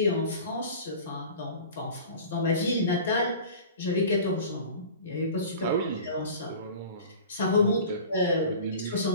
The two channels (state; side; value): inverted; both; correlation -0.39